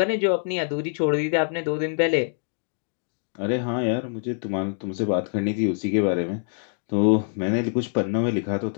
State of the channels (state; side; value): silent; right; 62 dB below the other